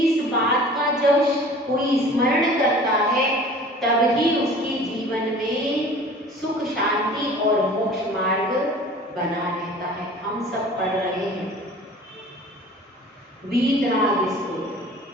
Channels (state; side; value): normal; both; correlation 0.45